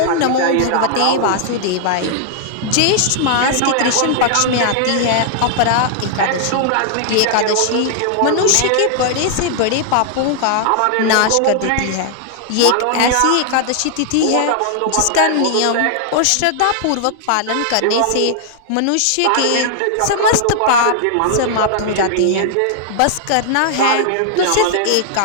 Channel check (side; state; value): both; different; correlation -0.01